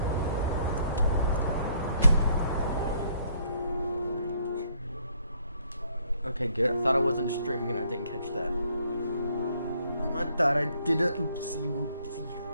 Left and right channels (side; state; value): both; inverted; correlation -0.67